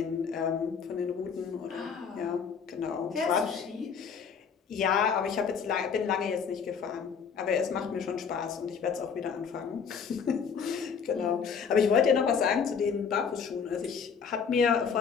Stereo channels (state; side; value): quieter; right; 6.4 dB